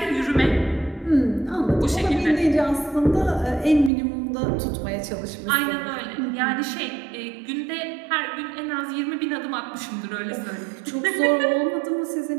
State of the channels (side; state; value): left; drops out; at 3.9 s